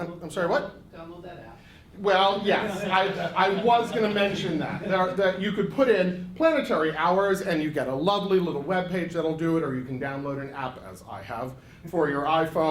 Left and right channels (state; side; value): identical; both; correlation 1.00